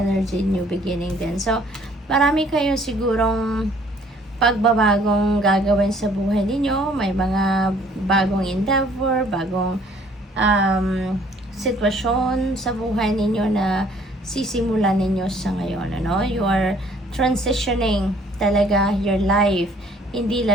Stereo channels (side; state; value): both; normal; correlation 0.59